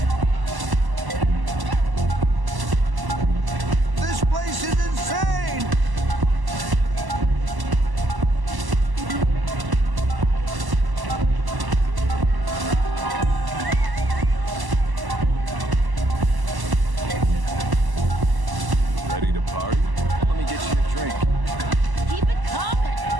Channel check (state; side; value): late; left; 1.0 ms